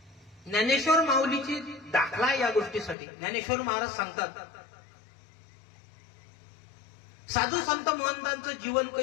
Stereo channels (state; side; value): drops out; right; at 3.0 s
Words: ज्ञानेश्वर माऊलीची दाखला या गोष्टीसाठी. ज्ञानेश्वर महाराज सांगतात, साधू संत महंतांचं जीवन